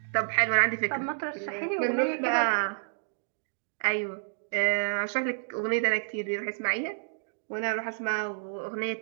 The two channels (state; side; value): silent; left; digital silence